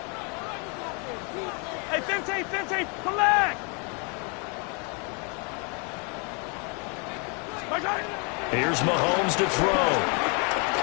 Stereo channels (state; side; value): quieter; right; 34.9 dB